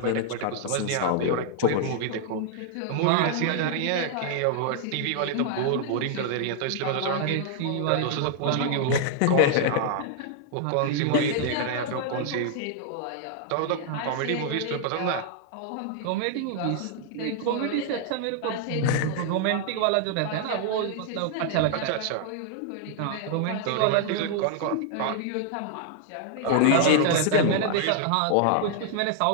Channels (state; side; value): different; both; correlation 0.00